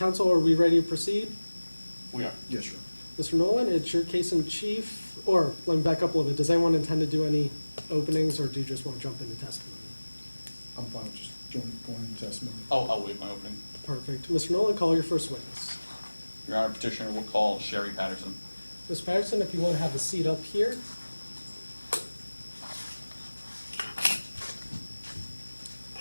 are we ready to proceed? We are. Yes, Your Honor. Mr. Nolan, it's your case in chief, or let me back up a little bit. Does anyone intend to do any openings, or do you just want to jump into testimony? I'm fine with just going into testimony. I'll waive my opening. Perfect. Mr. Nolan, call your first witness. Your Honor, petitioner will call Sherry Patterson. Ms. Patterson, if you want to have a seat up here.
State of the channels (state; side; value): inverted; both; correlation -1.00